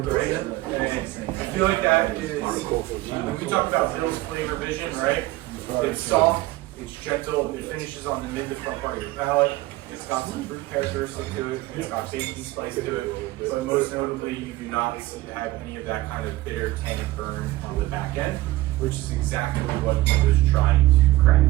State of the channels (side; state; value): left; quieter; 18.0 dB